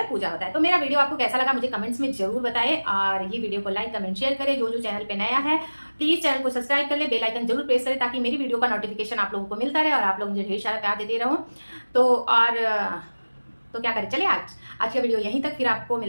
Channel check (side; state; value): both; inverted; correlation -1.00